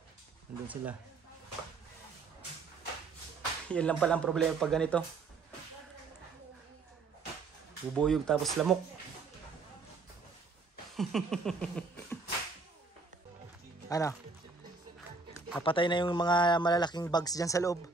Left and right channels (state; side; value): quieter; left; 4.1 dB